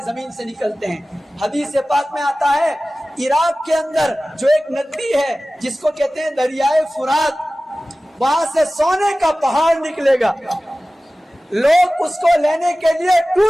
زمین سے نکلتے ہیں۔ حدیث پاک میں آتا ہے عراق کے اندر جو ایک ندی ہے جس کو کہتے ہیں دریائے فرات، وہاں سے سونے کا پہاڑ نکلے گا، لوگ اس کو لینے کے لیے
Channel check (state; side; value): normal; both; correlation 0.97